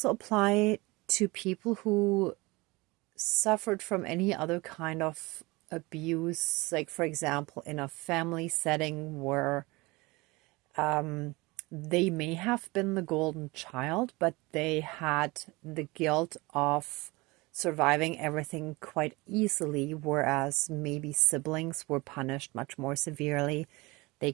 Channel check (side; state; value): left; quieter; 23.5 dB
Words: apply to people who suffered from any other kind of abuse, like, for example, in a family setting where they may have been the golden child, but they had the guilt of surviving everything quite easily, whereas maybe siblings were punished much more severely. They